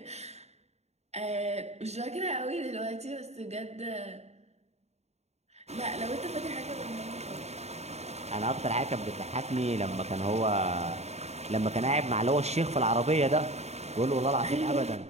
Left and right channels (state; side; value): late; left; 0.32 ms